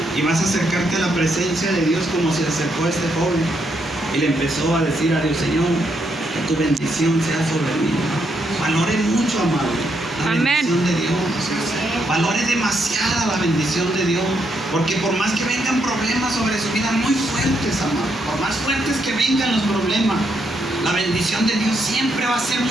y vas a acercarte a la presencia de Dios como se acercó este joven y le empezó a decir a Dios: Señor, que tu bendición sea sobre mí. Valore mucho, amado, la Amén. bendición de Dios. Valore demasiada la bendición de Dios, porque por más que vengan problemas sobre su vida muy fuertes, amado, por más fuertes que vengan los problemas, la bendición de Dios siempre va a ser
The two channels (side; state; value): both; normal; correlation 0.77